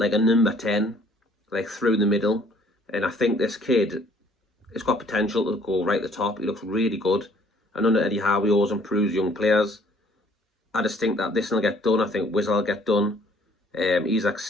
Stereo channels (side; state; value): both; normal; correlation 0.59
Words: a number 10, like through the middle. And I think this kid has got potential to go right at the top. He looks really good. I know that Eddie Howe always improves young players. I just think that this will get done. I think Wiz will get done. Isaac